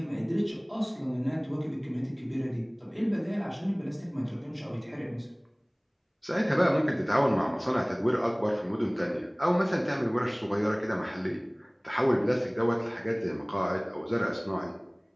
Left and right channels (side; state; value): both; identical; correlation 1.00